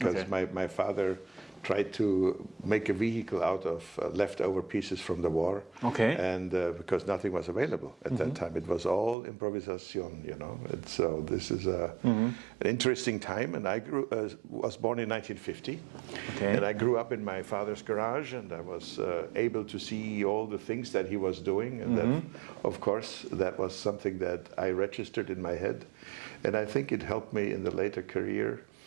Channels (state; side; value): drops out; left; at 9.2 s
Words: my father tried to make a vehicle out of leftover pieces from the war. And because nothing was available at that time, it was all improvisation, And so this is an interesting time. And I was born in 1950, and I grew up in my father's garage, and I was able to see all the things that he was doing. And that, of course, that was something that I registered in my head. And I think it helped me in the later career